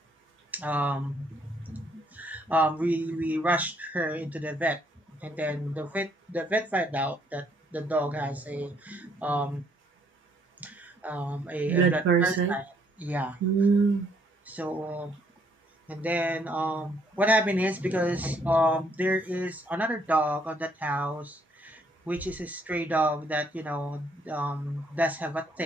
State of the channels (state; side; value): normal; both; correlation 0.68